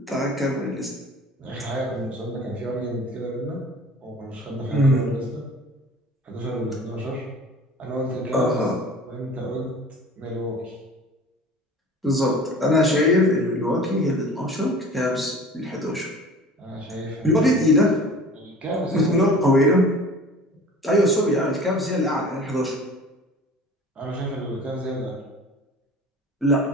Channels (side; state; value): both; normal; correlation 0.43